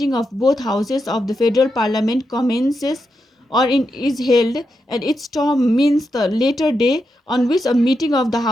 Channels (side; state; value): both; normal; correlation 0.85